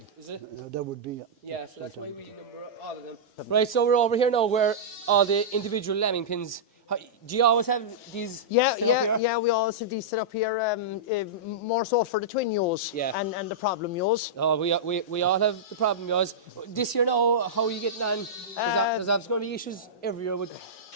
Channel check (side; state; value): both; normal; correlation -0.13